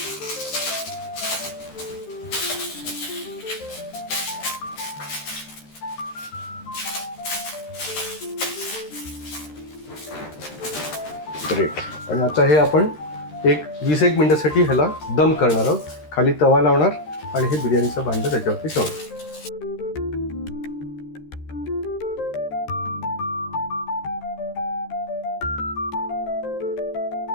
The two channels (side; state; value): right; late; 13 ms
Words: ग्रेट. आणि आता हे आपण एक 20-1 मिनिटासाठी ह्याला दम करणार आहोत. खाली तवा लावणार आणि हे बिर्याणीचं भांडं त्याच्यावरती ठेवणार.